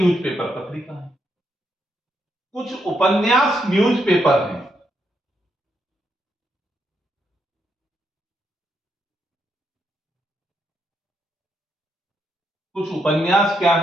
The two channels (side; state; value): both; normal; correlation 0.79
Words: पत्रिका है। कुछ उपन्यास न्यूज़पेपर हैं। कुछ उपन्यास क्या